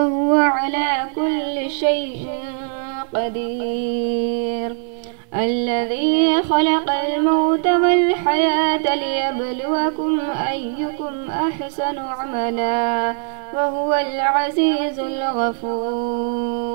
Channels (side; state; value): left; silent; 60 dB below the other